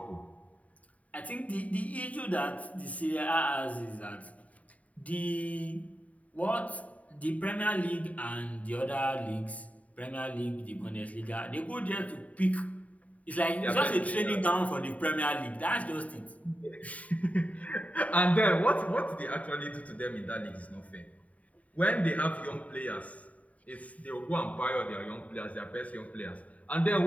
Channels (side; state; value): right; late; 0.069 ms